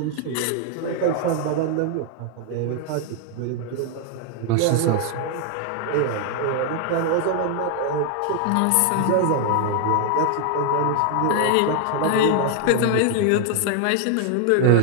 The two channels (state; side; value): different; both; correlation 0.00